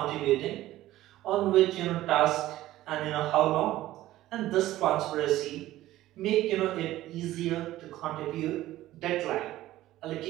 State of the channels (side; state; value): left; quieter; 15.2 dB